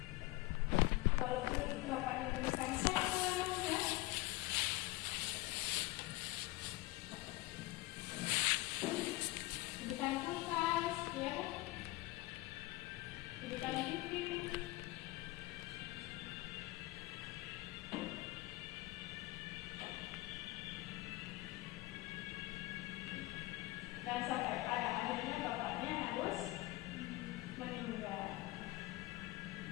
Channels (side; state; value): right; quieter; 20.1 dB